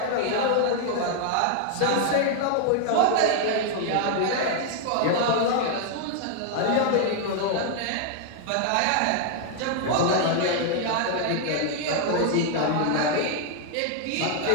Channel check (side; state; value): both; different; correlation 0.00